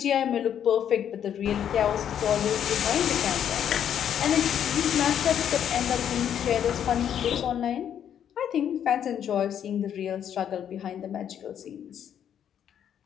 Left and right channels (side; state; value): right; quieter; 9.3 dB